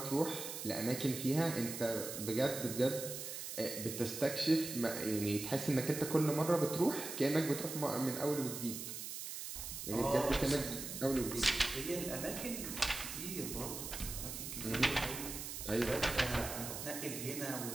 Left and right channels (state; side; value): noise; right; hiss, 7 dB below the sound